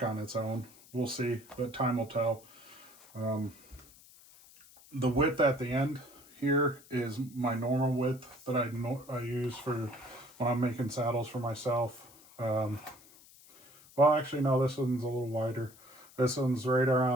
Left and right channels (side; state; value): left; noise; hiss, 23 dB below the sound